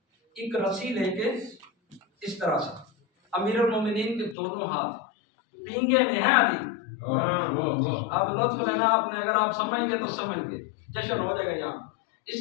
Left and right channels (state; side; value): drops out; right; at 4.4 s